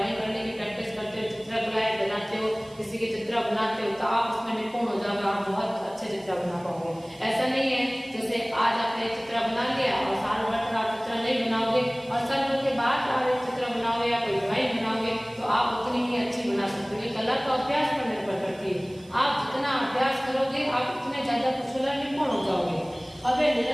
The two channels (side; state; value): right; noise; hiss, 26 dB below the sound